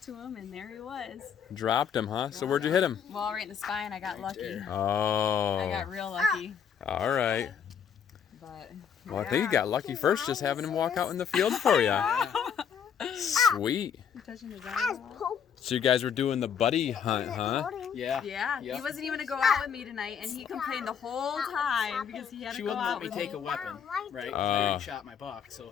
to him, and there he was. Dropped him, huh? So where'd you hit him? Well, right in the spine. I got lucky. there. Oh. I got real lucky. All right. But Well, I think you got lucky first just having him walk out in the field for you. Sweet. You touching his eye? So you guys were doing the buddy hunt, huh? Yeah. Yeah, Yep. he wasn't even gonna go out with me tonight, and he complained the whole time because he had She to go wouldn't out let me with take me. a weapon, right? I already shot my buck, so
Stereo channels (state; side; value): quieter; right; 7.7 dB